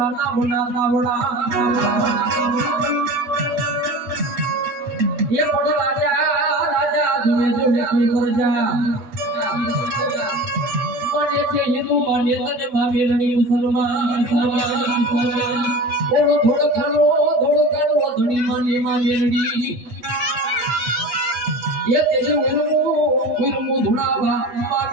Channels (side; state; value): left; late; 8.6 ms